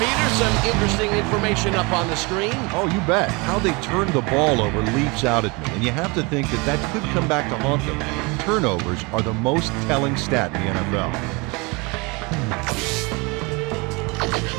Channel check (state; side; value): quieter; left; 27.6 dB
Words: some interesting information up on the screen. Oh, you bet. How they turned the ball over leaps out at me, and you have to think that that could come back to haunt them. Turnovers are the most telling stat in the NFL.